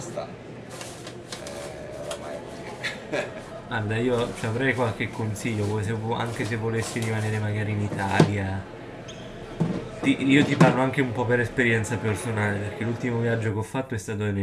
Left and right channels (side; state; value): both; identical; correlation 1.00